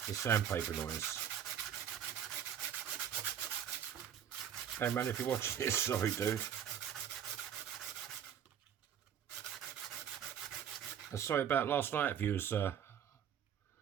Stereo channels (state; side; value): quieter; left; 9.0 dB